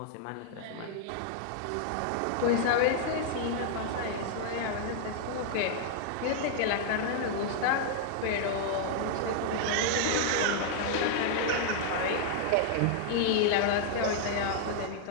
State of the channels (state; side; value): different; both; correlation -0.01